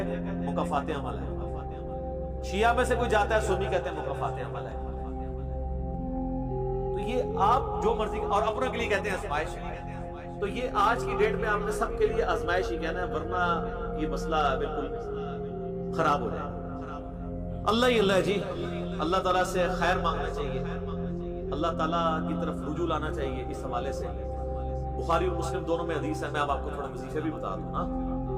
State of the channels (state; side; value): identical; both; correlation 1.00